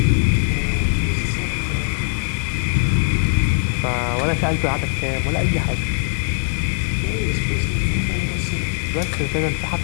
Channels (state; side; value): silent; right; 65 dB below the other